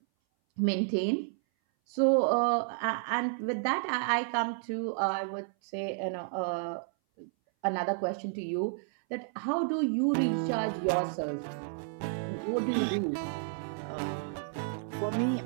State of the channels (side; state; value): left; silent; 57 dB below the other